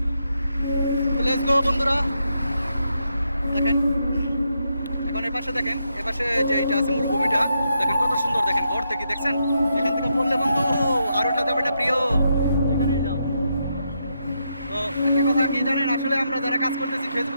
তো লেটস গো বন্ধুরা দেখেন এখন এপাশে দেখেন এপাশে যে এইটা আছে মরুভূমিটা দেখেন কত সুন্দর দেখেন ঘর থেকে দেখছেন এখান থেকে বললে বন্ধু আর ওঠা যাবে না প্রিয় যেখানেই যাও তো একটা কথা কি জানেন আসলে আমরা যারা কাজ করতেছি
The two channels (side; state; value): both; inverted; correlation -0.81